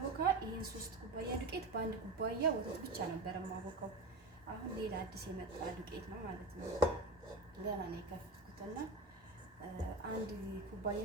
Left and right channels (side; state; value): left; quieter; 3.1 dB